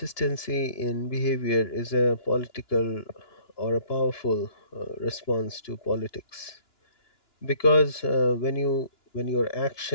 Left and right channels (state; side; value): late; right; 2.9 ms